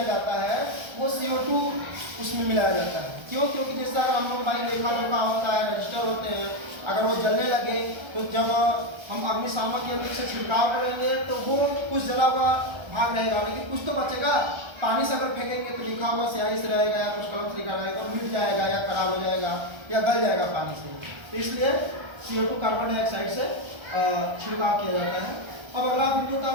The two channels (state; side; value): late; left; 1.3 ms